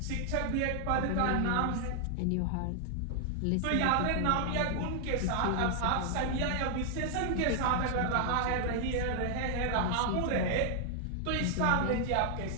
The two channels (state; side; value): different; both; correlation 0.00